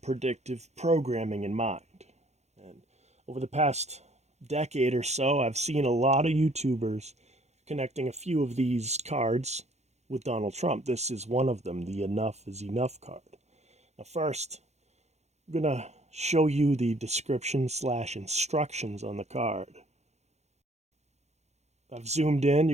programming in mind. And over the past decade or so, I've seen a lot of YouTubers connecting a few of these cards with Donald Trump. This is one of them, the Enough is Enough card. Now first, I'm going to show you the description/instructions on the card. I've zoomed in,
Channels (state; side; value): late; left; 0.32 ms